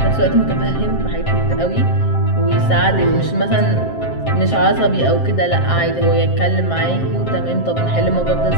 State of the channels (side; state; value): right; late; 7.5 ms